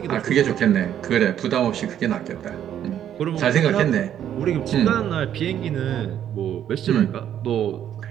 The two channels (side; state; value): left; quieter; 10.3 dB